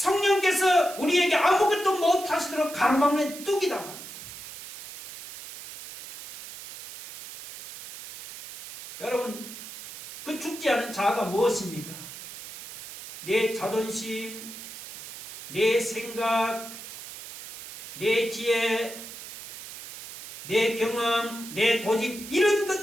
우리에게 아무것도 못하시도록 가로막는 뚝이다 말이죠. 여러분, 그 죽지 않은 자아가 무엇입니까? 내 자존심, 내 생각, 내 지혜, 내 경험, 내 고집, 이런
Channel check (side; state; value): right; noise; hiss, 13 dB below the sound